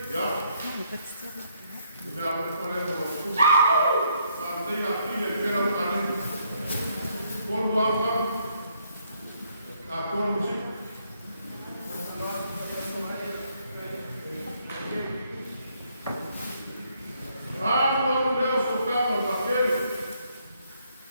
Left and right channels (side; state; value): both; inverted; correlation -0.70